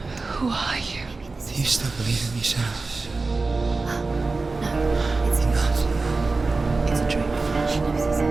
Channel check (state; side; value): quieter; left; 3.8 dB